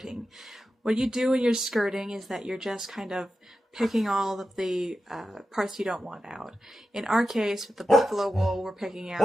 What you do when you're skirting is that you're just kind of picking all of the parts you don't want out. In our case, with the buffalo wool, we're picking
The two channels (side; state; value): both; normal; correlation 0.91